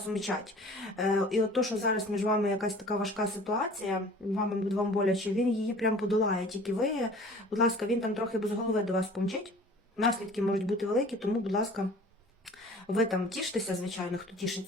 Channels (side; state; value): both; normal; correlation 0.46